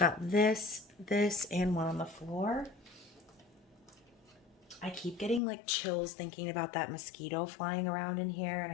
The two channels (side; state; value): right; drops out; at 5.4 s